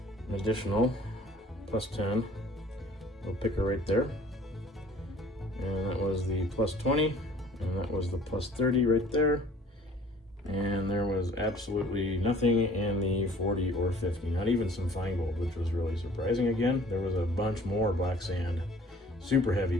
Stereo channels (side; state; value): both; normal; correlation 0.52